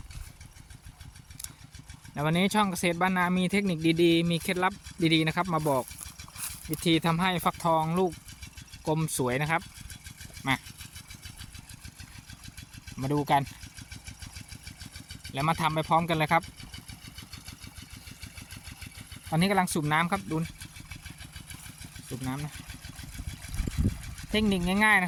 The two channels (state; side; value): identical; both; correlation 1.00